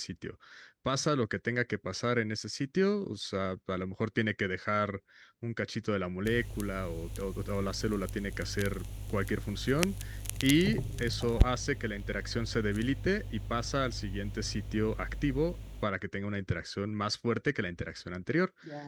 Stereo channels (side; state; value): both; identical; correlation 1.00